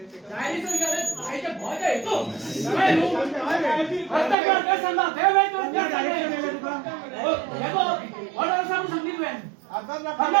आयच्या भोयच्या येतो काय नु प्रत्येक काय सांगा ते वेळ तो त्या हो हेगो ऑर्डर सांगितलं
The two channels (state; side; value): drops out; left; at 4.4 s